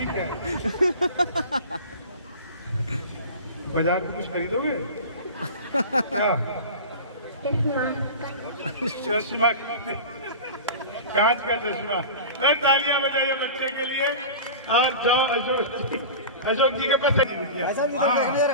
क्या है? बाजार में कुछ खरीदोगे क्या? चश्मा। चश्मा, कांच का चश्मा। अरे तालियां बजाइए बच्चे के लिए। और जाओ अशोक जी के पास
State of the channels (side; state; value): both; inverted; correlation -0.33